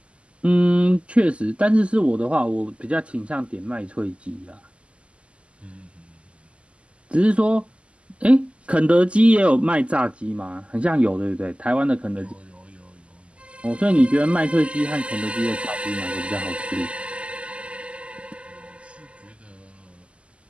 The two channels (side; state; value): left; late; 0.056 ms